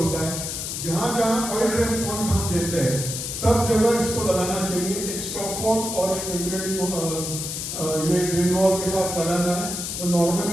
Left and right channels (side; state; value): left; noise; hiss, 5 dB below the sound